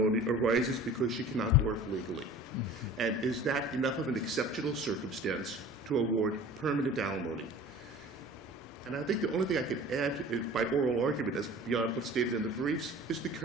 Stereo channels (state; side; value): normal; both; correlation 0.43